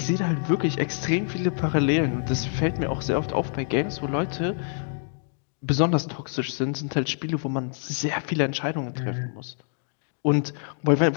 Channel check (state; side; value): silent; right; 61 dB below the other